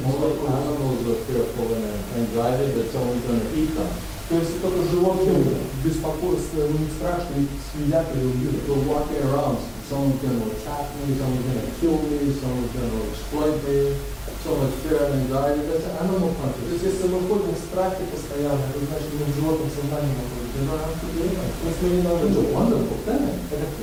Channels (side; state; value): both; identical; correlation 1.00